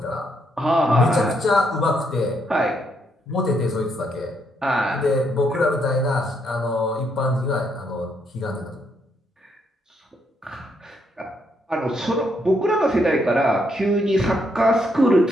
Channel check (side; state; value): both; normal; correlation 0.75